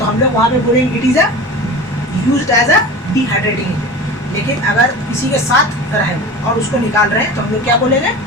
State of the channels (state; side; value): normal; both; correlation 0.34